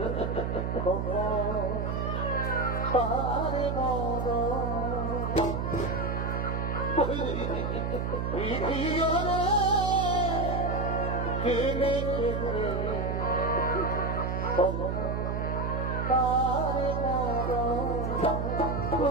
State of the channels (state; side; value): noise; right; hum, 1 dB below the sound